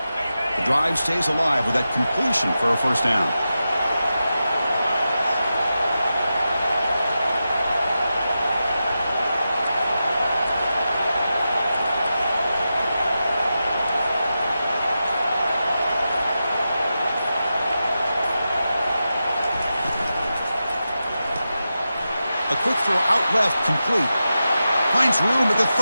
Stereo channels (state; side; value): inverted; both; correlation -0.91